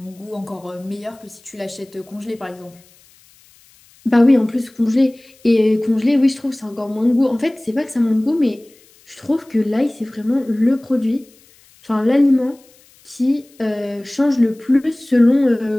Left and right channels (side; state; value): left; noise; hiss, 29 dB below the sound